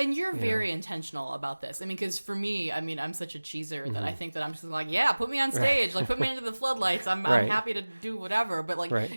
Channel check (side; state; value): both; inverted; correlation -1.00